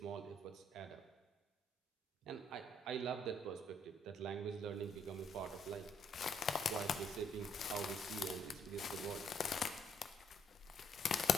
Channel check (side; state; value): both; normal; correlation 0.70